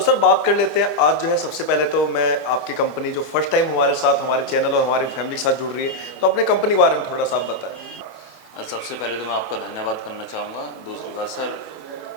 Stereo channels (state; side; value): late; right; 25 ms